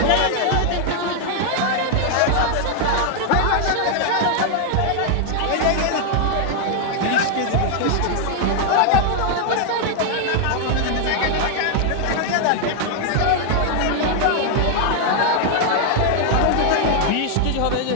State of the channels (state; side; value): different; both; correlation 0.00